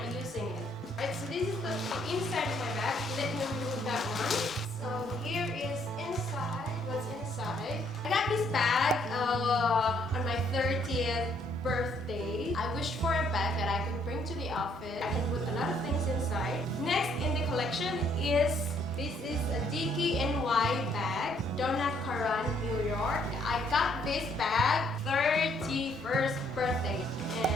using it. Right, so this is the inside of my bag. Let me remove that one. So here is inside. What's inside? I got this bag on my 30th birthday. I wished for a bag that I could bring to the office. I can put a lot of things inside. Next in the collection is this is a 𝓁𝒾𝓋𝓒𝑔𝒽 bag, 𝓁𝒾𝓃𝓒𝓃, New York. I got this bag 31st birthday,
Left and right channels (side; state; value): both; normal; correlation 0.68